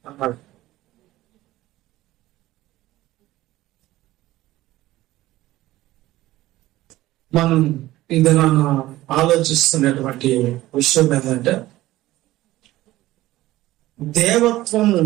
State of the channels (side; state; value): left; quieter; 16.4 dB